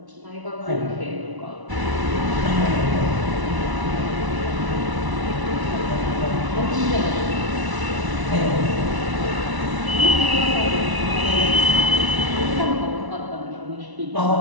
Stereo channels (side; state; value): left; late; 1.0 ms